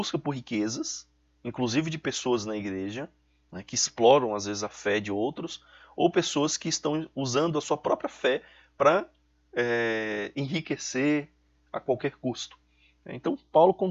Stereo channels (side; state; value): both; identical; correlation 1.00